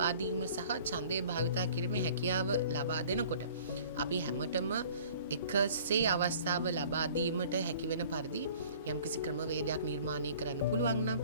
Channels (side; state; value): both; inverted; correlation -0.50